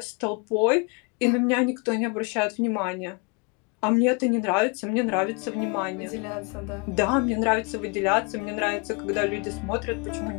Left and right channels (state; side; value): quieter; right; 32.7 dB